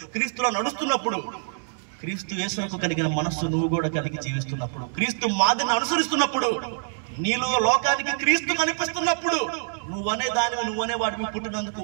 క్రీస్తులా నడుస్తున్నప్పుడు, క్రీస్తు యేసునకు కలిగిన మనస్సు నువ్వు కూడా కలిగి జీవిస్తున్నప్పుడు, క్రీస్తు మాదిరిని అనుసరిస్తున్నప్పుడు, నీలో లోకానికి క్రీస్తు కనిపిస్తున్నప్పుడు, నువ్వనే వాడిని పుట్టినందుకు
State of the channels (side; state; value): left; silent; digital silence